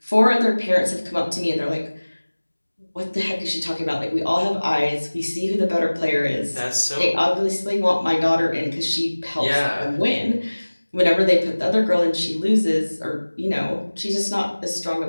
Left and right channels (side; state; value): both; inverted; correlation -1.00